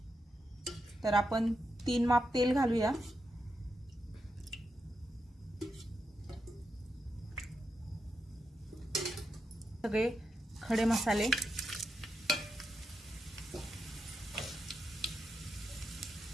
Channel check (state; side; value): normal; both; correlation 0.86